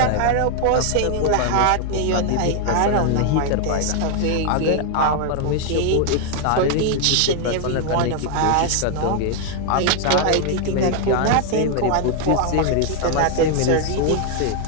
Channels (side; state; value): both; different; correlation 0.00